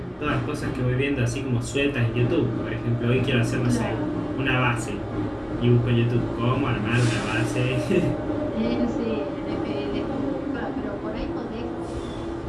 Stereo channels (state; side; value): identical; both; correlation 1.00